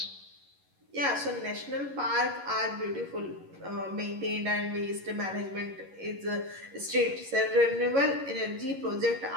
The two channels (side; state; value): left; late; 11 ms